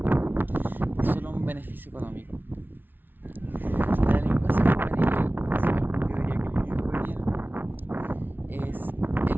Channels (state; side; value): late; left; 0.093 ms